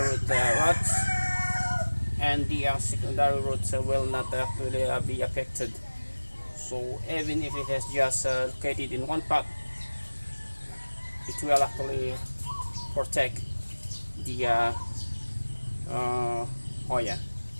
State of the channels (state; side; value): inverted; both; correlation -1.00